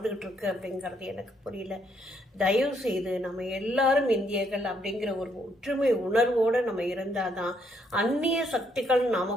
இருக்கு அப்படிங்கிறது எனக்கு புரியல. தயவு செய்து நம்ம எல்லாரும் இந்தியர்கள் அப்படிங்கிற ஒரு ஒற்றுமை உணர்வோடு நம்ம இருந்தாதான் அந்நிய சக்திகள்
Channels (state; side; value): normal; both; correlation 0.72